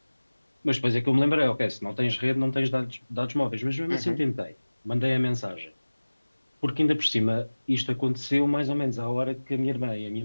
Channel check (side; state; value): both; inverted; correlation -1.00